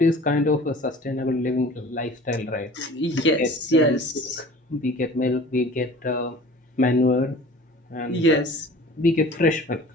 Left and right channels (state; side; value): normal; both; correlation 0.44